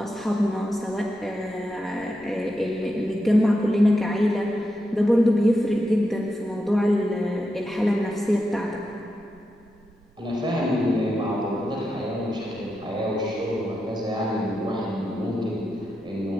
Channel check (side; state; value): right; noise; rumble, 29 dB below the sound